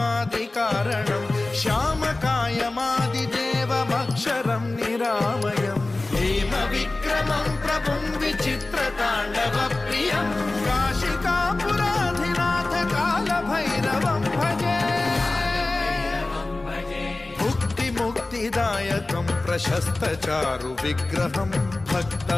श्यामकायमादिदेवमक्षरं निरामयं हेमविक्रमं प्रभुं विचित्रताण्डवप्रियं काशिकापुराधिनाथ कालभैरवं भजे मुक्तिदायकं प्रशस्तचारु विग्रहं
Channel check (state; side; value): quieter; right; 3.0 dB